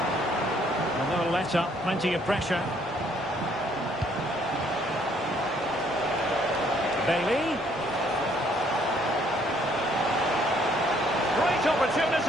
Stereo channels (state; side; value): normal; both; correlation 0.65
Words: And no let up, plenty of pressure. Bailey. Great